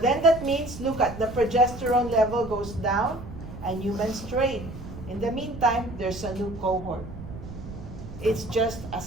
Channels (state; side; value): noise; right; rumble, 12 dB below the sound